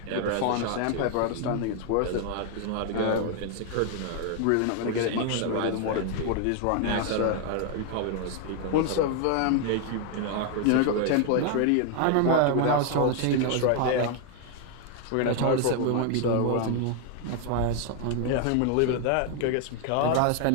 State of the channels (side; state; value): both; different; correlation 0.00